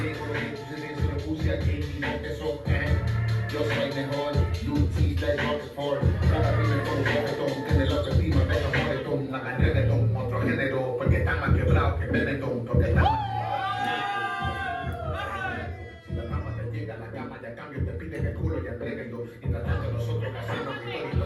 dejo, lo que sucede se lo puse aquí y no te soporte. Yo soy mejor, Lutis de Rockford. Cada primer con un reggaetón, tiene la autoestima, deja reggaetón, hagan reggaetón, otro género, porque están más quebrados que Benetton, porque están más. Si la fama te llega a la cama, ya cambio, te piden el culo y entréguenlo. Y tratando nosotros haciendo victoria y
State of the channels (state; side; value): identical; both; correlation 1.00